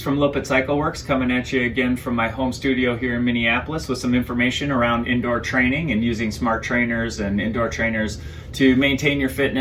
from Loppet Works coming at you again from my home studio here in Minneapolis with some information around indoor training and using smart trainers and indoor trainers to maintain your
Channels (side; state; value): both; identical; correlation 1.00